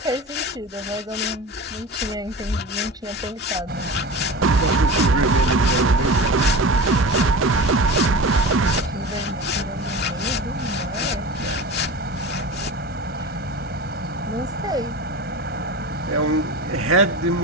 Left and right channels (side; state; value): both; normal; correlation 0.31